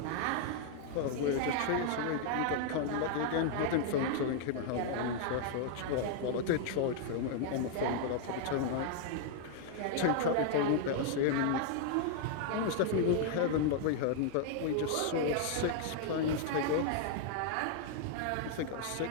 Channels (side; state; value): both; different; correlation -0.01